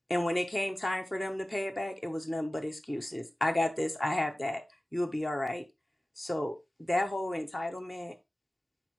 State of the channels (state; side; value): normal; both; correlation 0.97